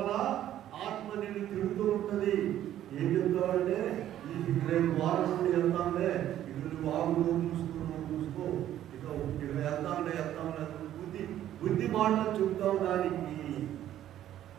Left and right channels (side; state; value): left; quieter; 12.0 dB